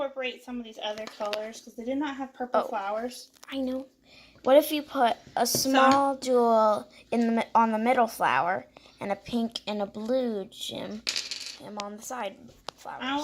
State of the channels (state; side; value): identical; both; correlation 1.00